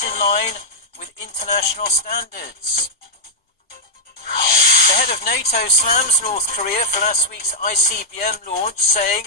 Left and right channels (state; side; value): normal; both; correlation -0.05